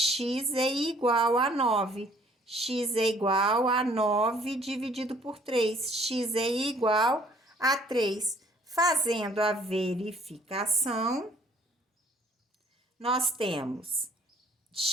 é igual a 9. X é igual a 9 dividido por 3. X é igual a 3. Fazendo a verificação, nós temos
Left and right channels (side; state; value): both; normal; correlation 0.59